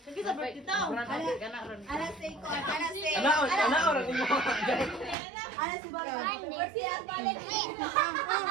Sige sa birthday daw. Alas 5 ko, alas 6. Ana orang mo. Alas si Balay. Birthday ang balik.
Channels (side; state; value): left; drops out; at 5.2 s